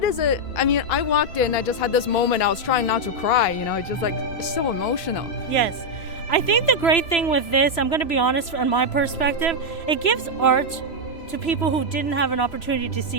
is it? I mean, I walked in, I just had this moment, I was trying not to cry, it's just like, it's so emotional. Yes. I think the great thing with this, I'm going to be honest from my perspective, it gives art to people who didn't have an opportunity to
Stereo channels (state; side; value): late; right; 3.0 ms